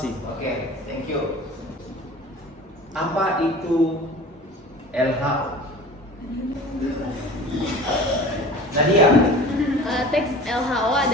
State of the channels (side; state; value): both; normal; correlation 0.40